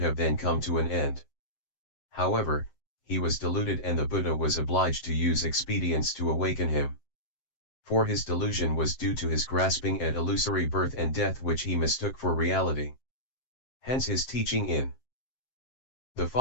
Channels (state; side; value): late; right; 7.6 ms